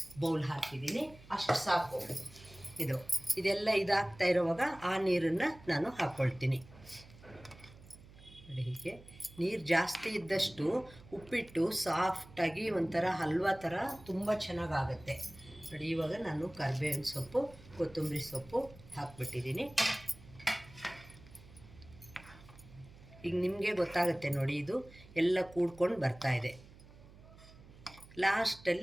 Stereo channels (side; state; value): right; noise; hum, 21 dB below the sound